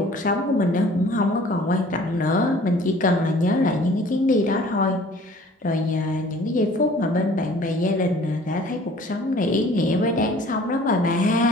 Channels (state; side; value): normal; both; correlation 0.51